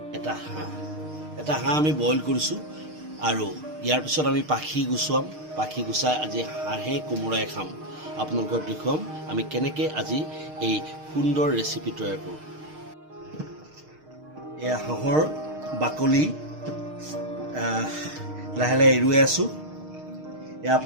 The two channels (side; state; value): left; late; 6.5 ms